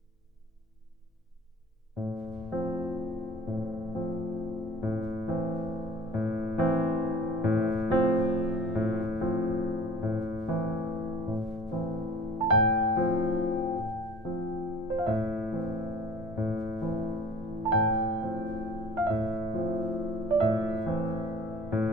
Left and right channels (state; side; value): normal; both; correlation 0.46